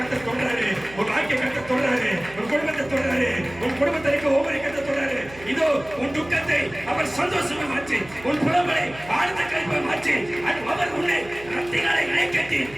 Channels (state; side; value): noise; right; hum, 19 dB below the sound